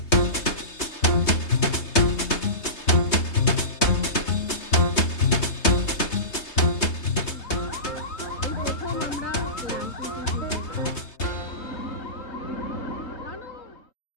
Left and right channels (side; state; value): right; late; 3.3 ms